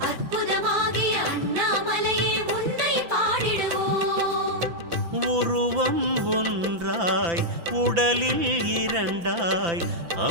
அற்புதமாகிய அண்ணாமலையே உன்னை பாடிடுவோம் உருவம் ஒன்றாய் உடலில் இரண்டாய்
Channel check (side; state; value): left; late; 5.9 ms